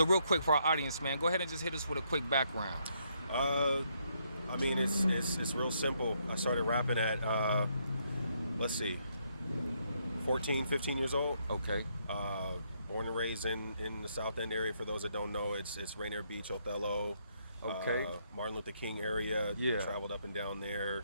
real quick for our audience, man, go ahead and just hit us with a quick background. I mean, it's real simple. I started rapping at, 14, 15 years old. Okay. Born and raised in the South End area. For those that don't know, it's Rainier Beach, Othello. Okay. Martin Luther King area. Yeah. Traveled up and down there.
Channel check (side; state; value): both; inverted; correlation -0.74